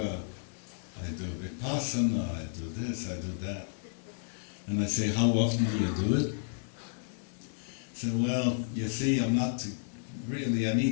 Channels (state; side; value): silent; right; digital silence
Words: I do Vipassana, I do this, I do that. And I say, how often do you do it? I say, well, you see, I'm not really, I